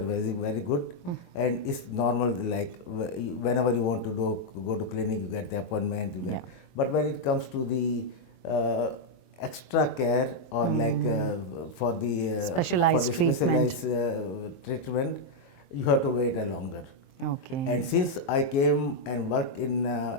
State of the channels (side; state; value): right; late; 23 ms